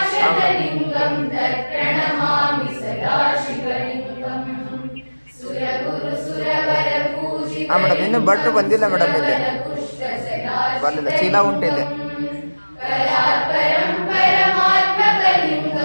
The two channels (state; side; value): inverted; both; correlation -1.00